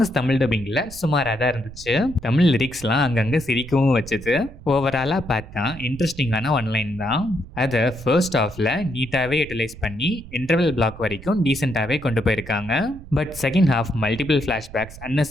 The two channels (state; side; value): noise; right; rumble, 15 dB below the sound